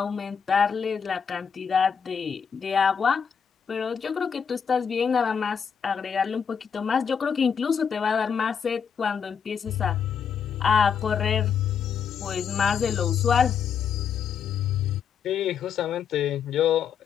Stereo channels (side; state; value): right; quieter; 7.0 dB